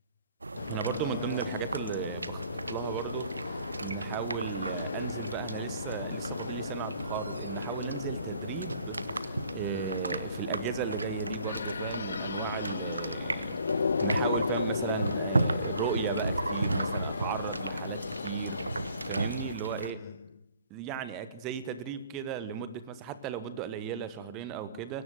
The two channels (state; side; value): inverted; both; correlation -0.56